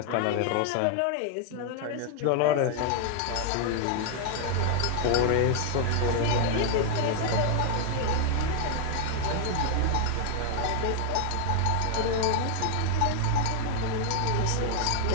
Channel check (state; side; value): different; both; correlation 0.00